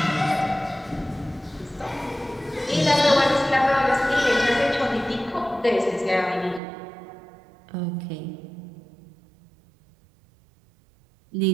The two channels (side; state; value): left; drops out; at 6.6 s